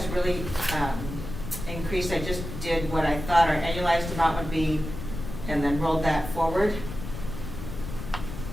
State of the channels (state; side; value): noise; left; rumble, 8 dB below the sound